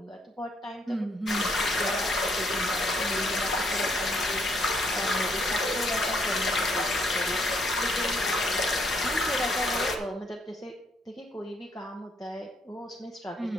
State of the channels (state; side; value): normal; both; correlation 0.70